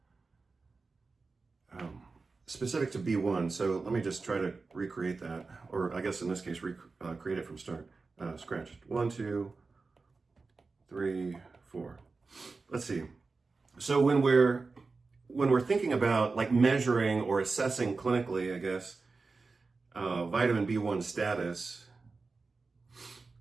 Specific to B1, so let me just try to recreate that, or I guess in this case, create it from scratch. 1, 2, 3, 4. Let's see. So when we're thinking about like measuring or assessing clinically, I guess, vitamin B1 status,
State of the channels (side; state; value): left; quieter; 4.1 dB